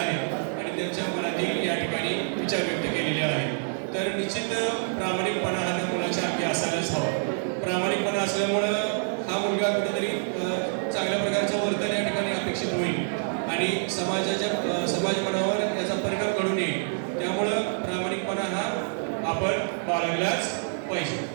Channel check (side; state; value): left; silent; digital silence